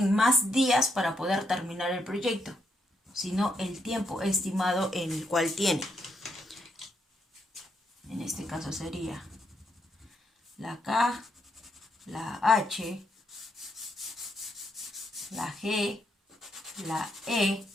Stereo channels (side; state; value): both; normal; correlation 0.78